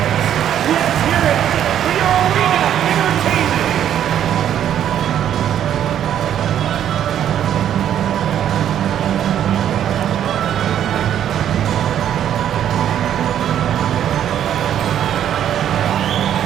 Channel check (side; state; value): left; quieter; 10.2 dB